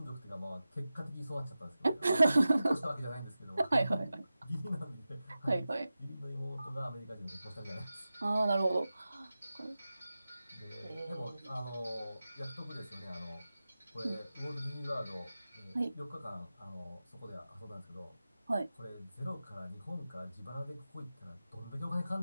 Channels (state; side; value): inverted; both; correlation -0.94